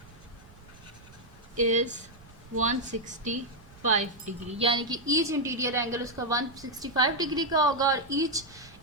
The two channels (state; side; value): noise; right; rumble, 23 dB below the sound